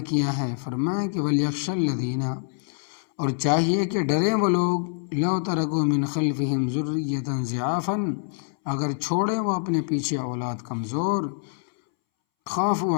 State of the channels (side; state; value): right; silent; 62 dB below the other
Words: ہیں۔ فرمایا کہ وَلْيَخْشَ الَّذِينَ، اور چاہیے کہ ڈریں وہ لوگ، لَوْ تَرَكُوا مِنْ خَلْفِهِمْ ذُرِّيَّةً ضِعَافًا، اگر چھوڑیں وہ اپنے پیچھے اولاد کمزور، خوف